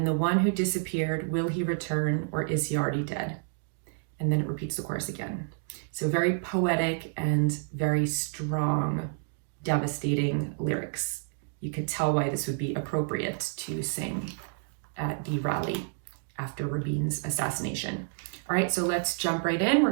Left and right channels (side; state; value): left; silent; digital silence